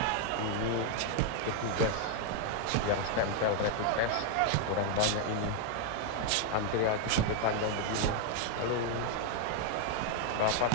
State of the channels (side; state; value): both; different; correlation 0.00